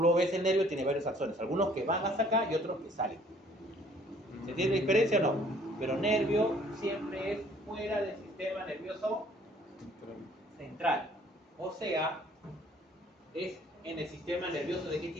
ves, el nervio tiene varios axones. Algunos que van hasta acá y otros que salen. ¿Se entiende la diferencia o no? Pero nervio siempre es fuera del sistema nervioso central. O sea, es en el sistema nervioso ¿de qué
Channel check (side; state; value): both; normal; correlation 0.58